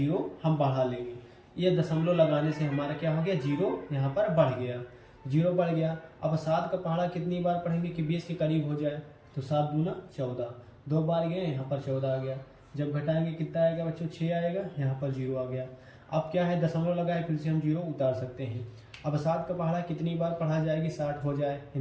हम बढ़ा लेंगे। ये दशमलव लगाने से हमारा क्या हो गया, 0 यहाँ पर बढ़ गया। 0 बढ़ गया। अब 7 का पहाड़ा कितनी बार पढ़ेंगे कि 20 के करीब हो जाए। तो 7 दूना 14, 2 बार गए, यहाँ पर 14 आ गया। जब घटाएंगे कितना आएगा बच्चों? 6 आएगा। यहाँ पर 0 आ गया। अब क्या है, दशमलव लगाए, फिर से हम 0 उतार सकते हैं। अब 7 का पहाड़ा कितनी बार पढ़ा जाएगी? 60 हो जाए,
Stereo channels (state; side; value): identical; both; correlation 1.00